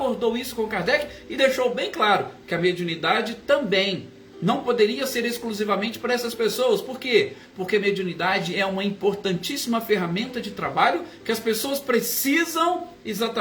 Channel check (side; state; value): both; identical; correlation 1.00